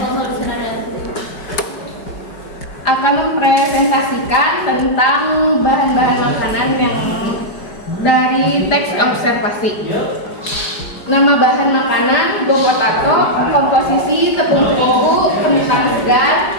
Lucinariati. akan mempresentasikan tentang bahan-bahan makanan yang dari teks observasi. Nama bahan makanan go potato, komposisi tepung terigu, kentang segar,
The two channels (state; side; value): late; right; 5.0 ms